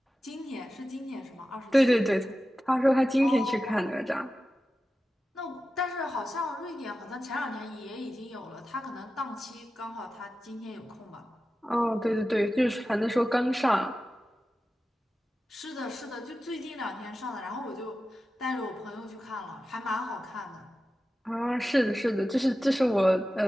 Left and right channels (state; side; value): normal; both; correlation 0.93